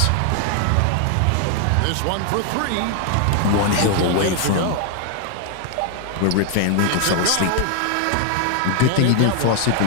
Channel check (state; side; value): different; both; correlation 0.00